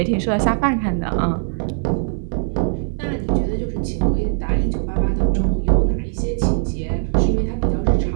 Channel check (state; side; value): silent; left; 66 dB below the other